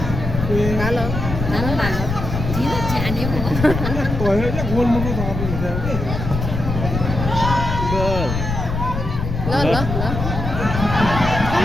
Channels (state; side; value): noise; left; rumble, 4 dB below the sound